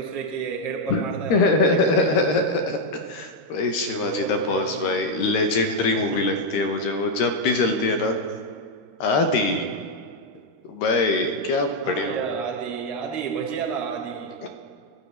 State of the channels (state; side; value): late; right; 13 ms